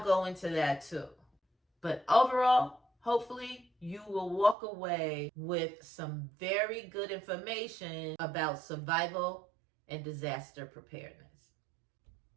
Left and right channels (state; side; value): drops out; left; at 4.5 s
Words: go into that too. But overall, hopefully you will walk away with some very good information about survival and disaster preparedness.